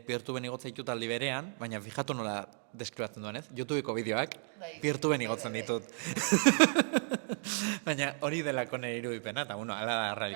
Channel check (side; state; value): left; silent; 55 dB below the other